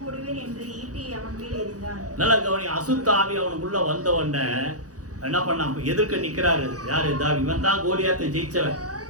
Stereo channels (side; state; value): left; late; 0.67 ms